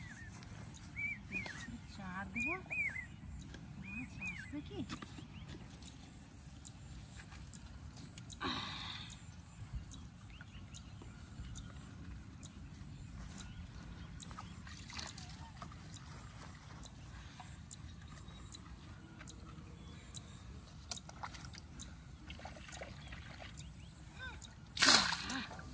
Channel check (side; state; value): both; identical; correlation 1.00